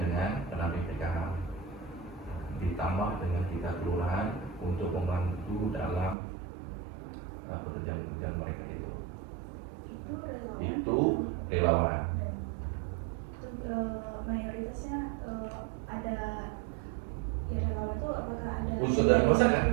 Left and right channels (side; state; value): left; drops out; at 6.2 s